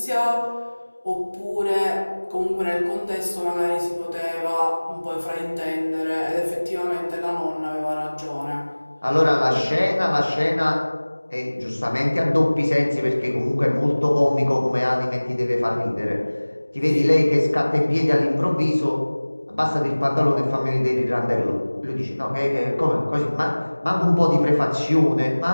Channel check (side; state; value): both; inverted; correlation -1.00